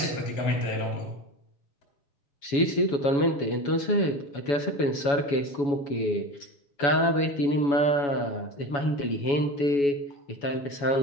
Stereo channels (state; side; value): late; right; 7.1 ms